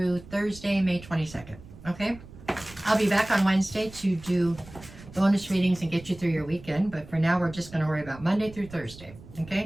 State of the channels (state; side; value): noise; right; rumble, 18 dB below the sound